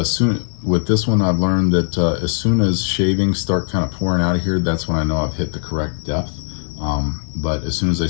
with this one I've learned that as soon as shavings start kind of pouring out of here, that's when I know I've hit the correct depth. But as soon as they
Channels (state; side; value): silent; right; digital silence